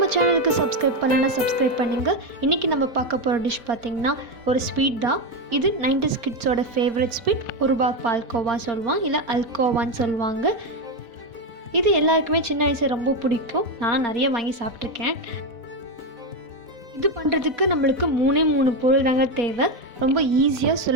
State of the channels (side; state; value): left; late; 4.0 ms